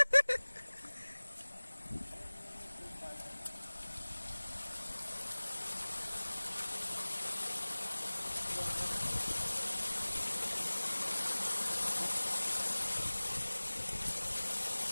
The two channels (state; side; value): inverted; both; correlation -1.00